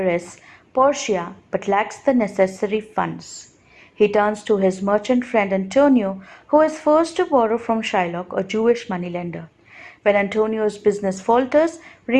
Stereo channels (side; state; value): both; identical; correlation 1.00